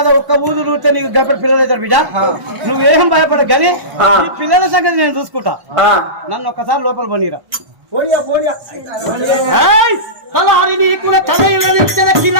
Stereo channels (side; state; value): left; late; 1.1 ms